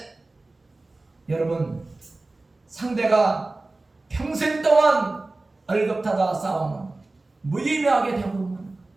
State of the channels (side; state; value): left; quieter; 3.1 dB